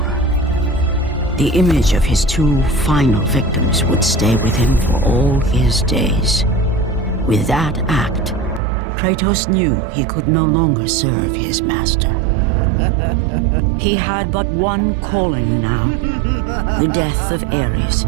The image of his two final victims would stay with him for all his days. With that act, Kratos knew he could no longer serve his master. He had but one calling now, the death of Ares.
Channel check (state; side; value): drops out; left; at 8.6 s